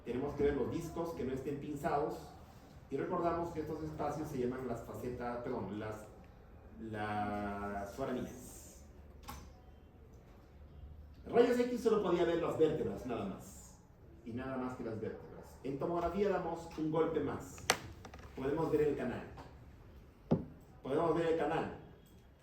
Tenemos que ver los discos que no estén pinzados. Y recordamos que estos espacios se llaman las facetas, perdón, las foramíneas. Rayos X solo podía ver las vértebras, nada más. Y nada más que las vértebras. En tomografía damos un golpe más. Podemos ver el canal. Podemos ver el canal,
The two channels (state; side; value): identical; both; correlation 1.00